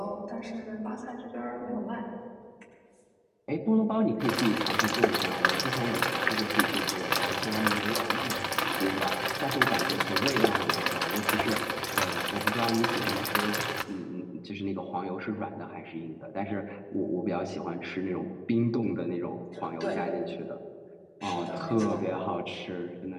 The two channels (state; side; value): identical; both; correlation 1.00